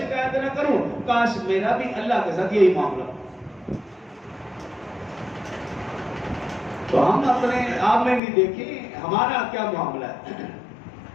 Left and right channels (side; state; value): right; drops out; at 8.2 s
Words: نہ کروں. کاش میرا بھی اللہ کے ساتھ یہی معاملہ ہو. تو ہم اپنے آپ میں بھی دیکھیں ہمارا کیا معاملہ ہے،